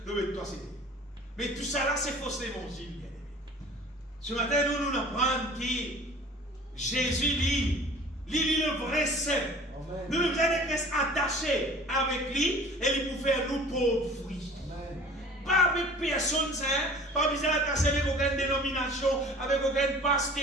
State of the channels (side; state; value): both; normal; correlation 0.46